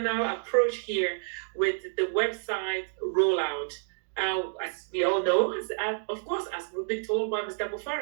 approach here with the website rollout. As we all know, of course, as we've been told by Mr.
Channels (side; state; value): left; silent; digital silence